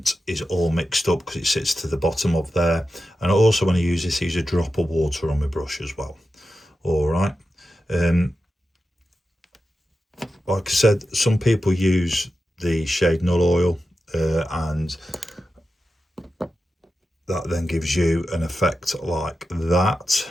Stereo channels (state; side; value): normal; both; correlation 0.91